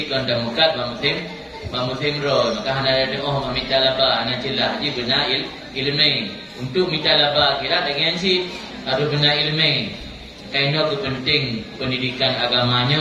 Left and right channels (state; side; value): identical; both; correlation 1.00